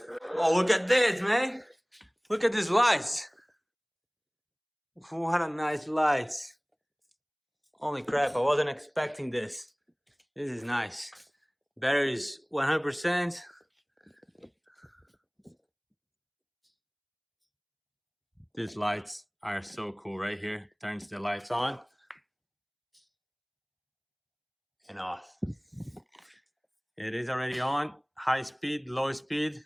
Oh, look at this, man. Look at these lights. What a nice lights. Holy crap, I wasn't expecting this. This is nice. Battery is 100%. These lights are so cool right here. Turns the lights on and off. It is already on. High speed, low speed,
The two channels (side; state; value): both; identical; correlation 1.00